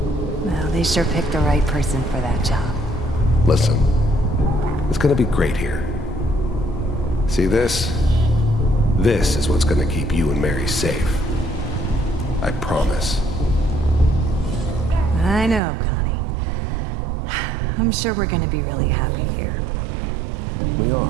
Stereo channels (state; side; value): drops out; left; at 15.6 s